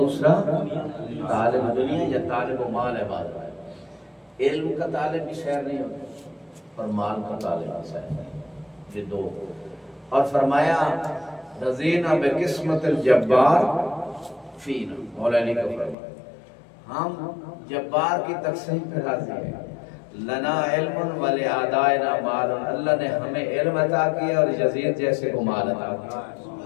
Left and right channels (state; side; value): drops out; right; at 16.0 s